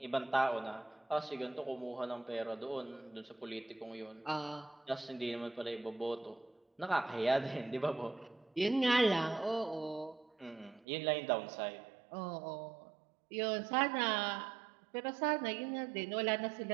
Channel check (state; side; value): drops out; left; at 10.9 s